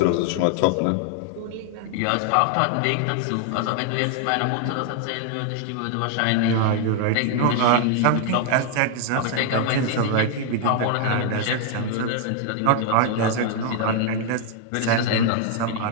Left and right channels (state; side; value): different; both; correlation 0.00